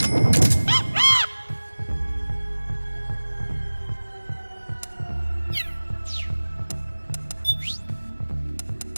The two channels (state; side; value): inverted; both; correlation -1.00